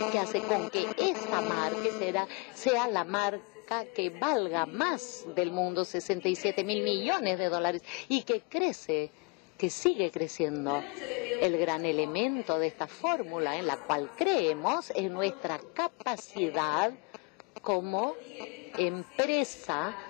Que hace con que esta marca sea la marca que valga más del mundo, 67.000 millones de dólares, y que crece, que sigue creciendo. El gran elemento de esta fórmula en la cual creemos es nuestra capacidad como empresa,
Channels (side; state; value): right; quieter; 32.6 dB